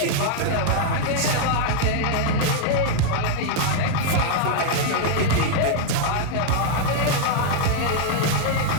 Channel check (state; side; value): different; both; correlation 0.00